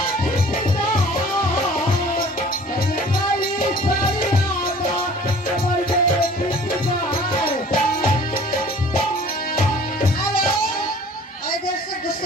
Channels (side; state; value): both; normal; correlation 0.49